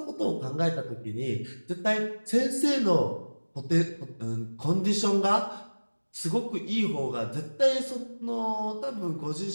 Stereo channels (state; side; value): inverted; both; correlation -1.00